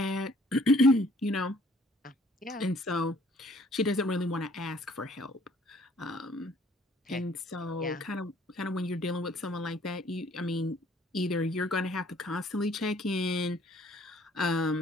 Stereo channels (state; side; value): normal; both; correlation 0.59